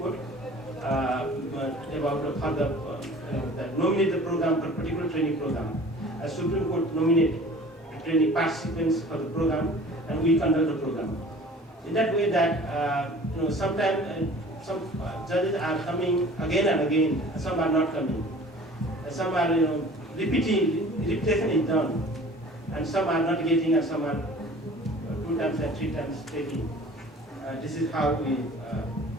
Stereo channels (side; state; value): both; normal; correlation 0.46